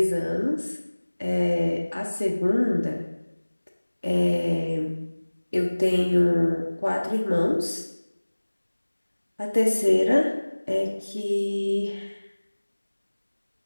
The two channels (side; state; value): both; inverted; correlation -1.00